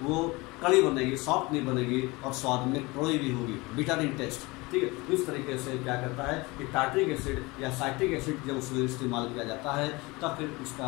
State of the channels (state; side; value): quieter; right; 23.7 dB